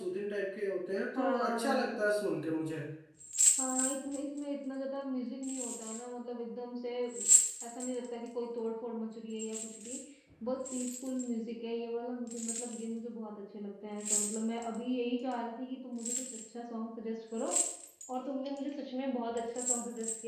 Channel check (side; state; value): both; identical; correlation 1.00